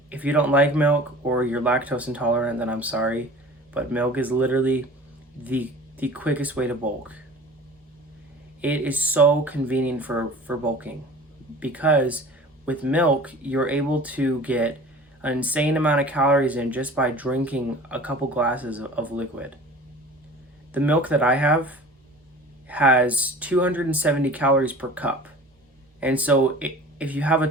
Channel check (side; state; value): both; normal; correlation 0.42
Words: If you don't like milk or you're lactose intolerant, then I'm sorry, but milk is literally the quickest way to bulk. It is so convenient for bulking, because with milk, you're able to get an insane amount of calories in just by drinking a couple glasses of liquid. The milk that I have has 270 calories per cup. And so if you have a